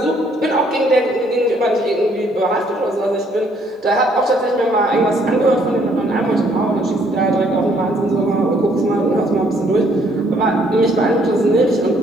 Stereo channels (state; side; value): normal; both; correlation 0.66